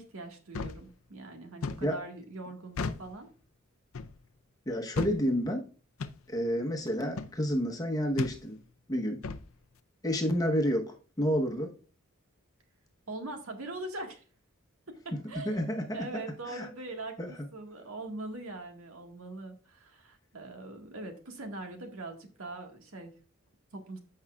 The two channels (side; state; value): both; normal; correlation 0.65